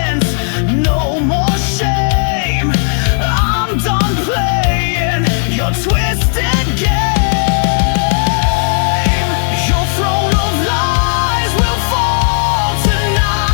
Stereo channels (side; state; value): right; silent; digital silence